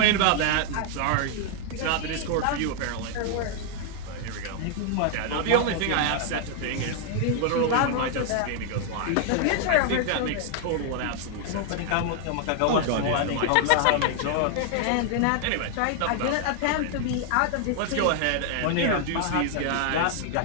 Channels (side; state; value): both; different; correlation 0.00